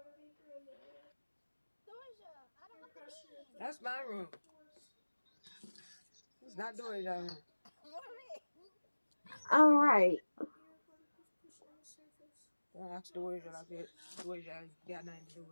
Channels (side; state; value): both; inverted; correlation -1.00